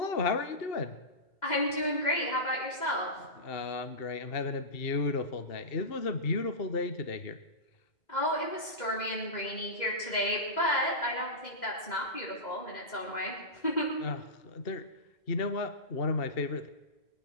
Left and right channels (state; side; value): late; right; 2.0 ms